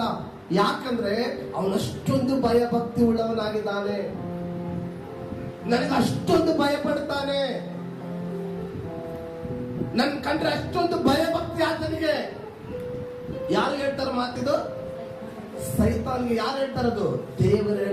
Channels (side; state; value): both; identical; correlation 1.00